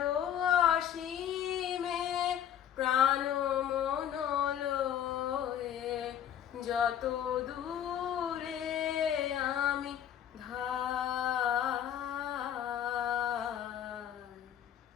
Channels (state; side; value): quieter; right; 10.0 dB